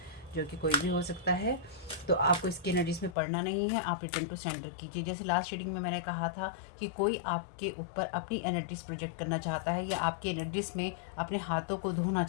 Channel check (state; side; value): drops out; right; at 3.2 s